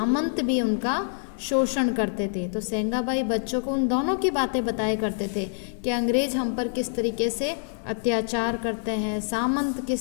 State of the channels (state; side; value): silent; right; 61 dB below the other